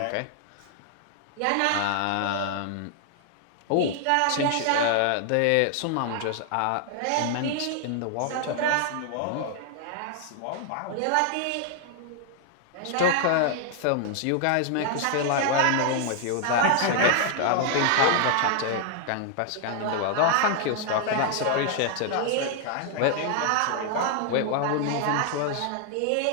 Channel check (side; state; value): both; different; correlation 0.00